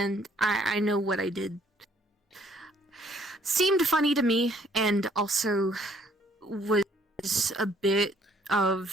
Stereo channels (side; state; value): both; normal; correlation 0.63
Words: I know what I did seemed funny to me, and also was a bit